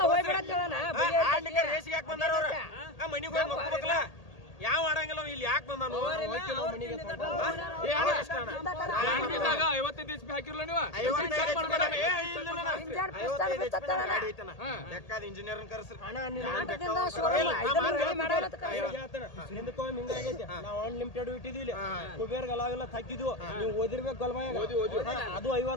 ರೇಸಿಗೆ ಯಾಕೆ ಬಂದಾರ ಅವ್ರ ಮನಿಗೆ ಹೋಗಿ ಮಕ್ಕಬೇಕಲ್ಲ ಯಾವ ಆಡಂಗಿಲ್ಲ ಇಲ್ಲಿ ಯಾಕೆ ಬಂದಾನು 55 HP ಹಾಕಿರ್ಲ ನೀವು ಬೇಕಾದ ಇಂಜಿನಿಯರ್ ಕರ್ಸ್ರಿ ನಾವು ಅನ್ಲಿಮಿಟೆಡ್ ಇಟ್ಟಿದ್ವಿ ಕುಬೇರ್ ಅಲಾವೆಲ್ಲ ಹಾಕಿದ್ವು ನೀವು ಓದಿರ್ಬೇಕು ಗಲ್ಮಾಯ ಅದು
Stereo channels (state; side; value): late; right; 1.8 ms